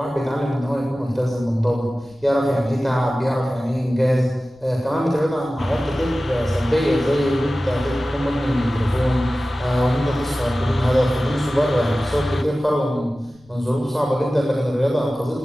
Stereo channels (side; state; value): left; noise; rumble, 29 dB below the sound